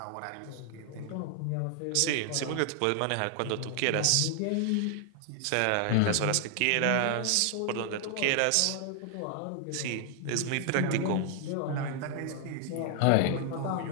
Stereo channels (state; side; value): different; both; correlation 0.00